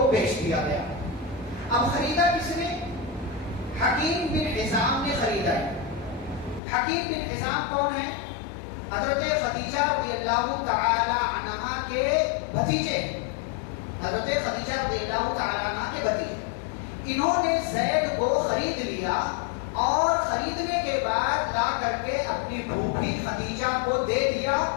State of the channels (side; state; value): right; drops out; at 6.6 s